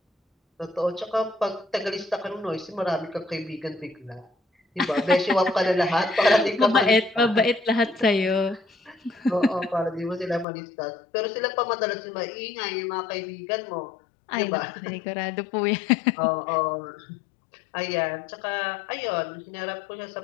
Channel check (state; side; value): drops out; right; at 10.5 s